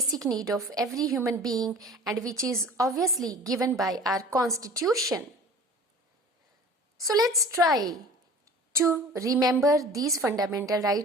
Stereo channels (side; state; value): both; normal; correlation 0.43